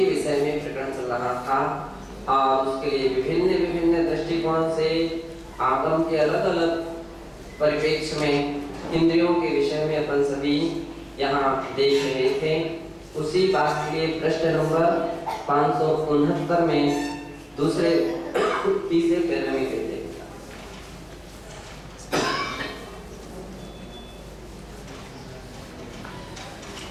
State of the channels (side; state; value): both; identical; correlation 1.00